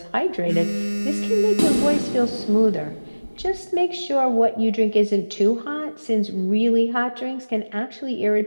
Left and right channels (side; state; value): both; inverted; correlation -1.00